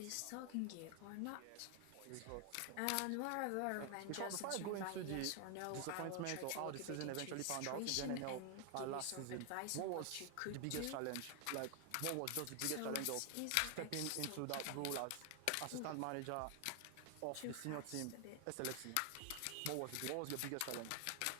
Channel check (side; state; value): both; different; correlation 0.00